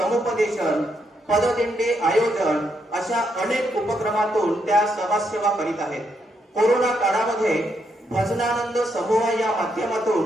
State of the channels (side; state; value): both; normal; correlation 0.78